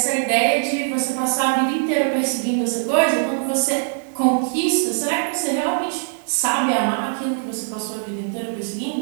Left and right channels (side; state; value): left; silent; digital silence